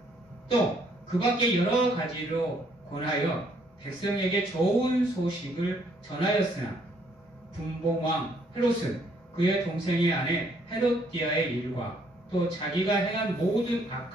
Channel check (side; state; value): both; normal; correlation 0.67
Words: 또 그 밖에 여러 가지로 권하여 백성에게 좋은 소식을 전하였으나 분봉왕 헤롯은 그의 동생의 아내 헤롯디아의 일과 또 자기가 행한 모든